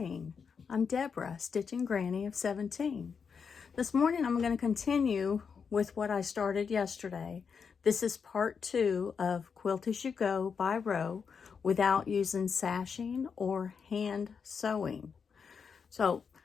I'm Deborah, Stitching Granny of 17. This morning I'm going to continue with what I started yesterday. This is part 2 of Quilt as You Go by row without using sashing or hand sewing.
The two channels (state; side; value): quieter; right; 6.1 dB